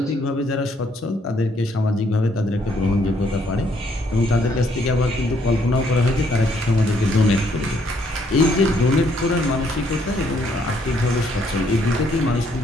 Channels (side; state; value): both; normal; correlation 0.69